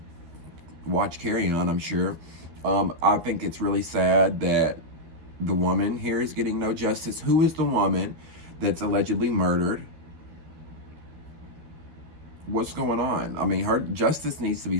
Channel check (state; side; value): late; left; 12 ms